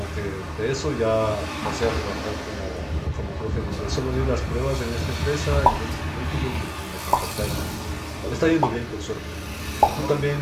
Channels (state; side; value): identical; both; correlation 1.00